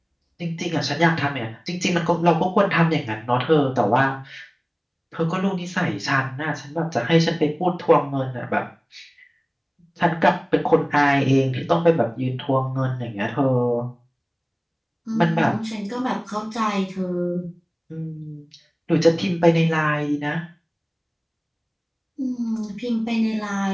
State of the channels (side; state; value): both; identical; correlation 1.00